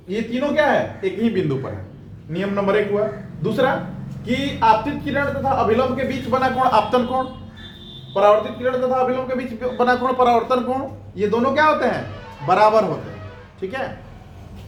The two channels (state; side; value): identical; both; correlation 1.00